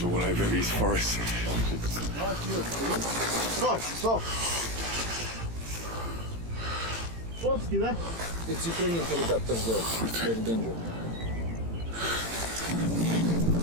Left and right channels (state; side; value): late; left; 18 ms